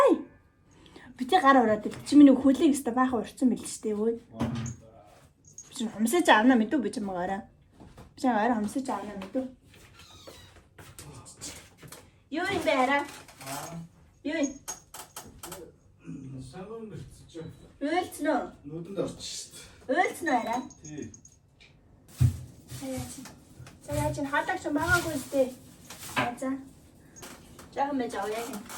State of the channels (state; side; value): identical; both; correlation 1.00